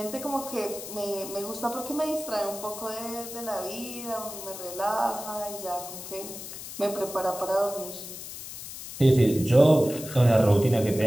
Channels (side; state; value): left; noise; hiss, 11 dB below the sound